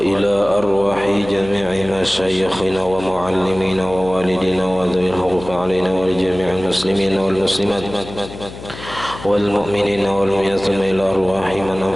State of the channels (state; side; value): noise; left; hum, 14 dB below the sound